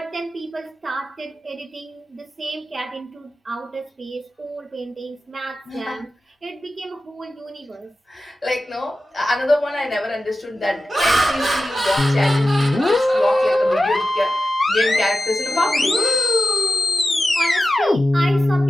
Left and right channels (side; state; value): both; normal; correlation 0.93